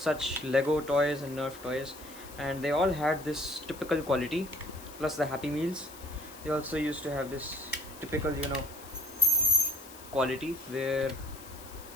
Lego toys and Nerf toys, and they all had this typical quality, plus the Happy Meals. They also used to have this typical quality where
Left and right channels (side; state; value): left; noise; hiss, 18 dB below the sound